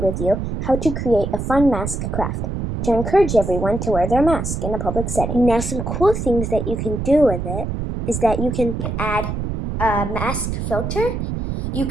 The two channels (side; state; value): right; noise; rumble, 3 dB below the sound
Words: with you how to create a fun mask craft to encourage everyone to wear their mask in a public setting. Now some cool things that you can do with it is that you can add a mask filter. You